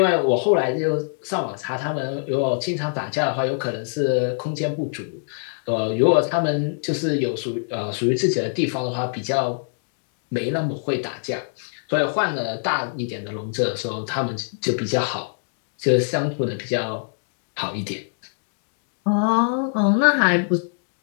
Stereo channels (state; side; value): silent; right; digital silence